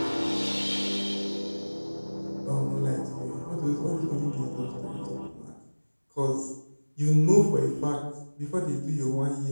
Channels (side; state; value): both; inverted; correlation -1.00